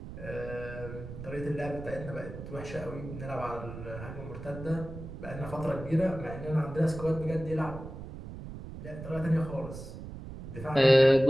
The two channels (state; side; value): noise; right; rumble, 11 dB below the sound